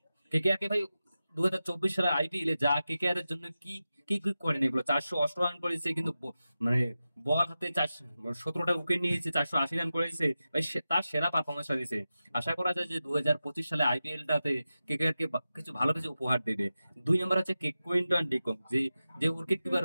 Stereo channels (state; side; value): inverted; both; correlation -0.93